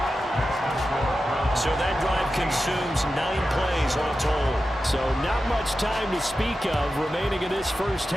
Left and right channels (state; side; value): normal; both; correlation 0.92